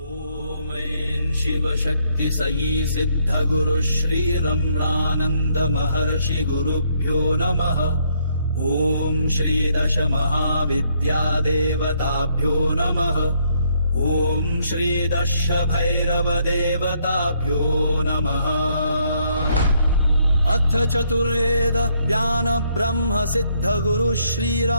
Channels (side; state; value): both; inverted; correlation -0.71